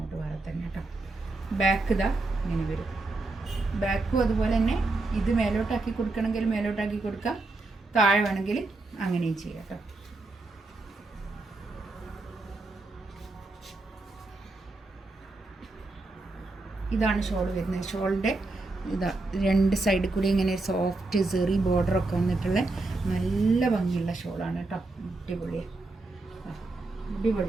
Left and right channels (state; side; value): quieter; left; 3.2 dB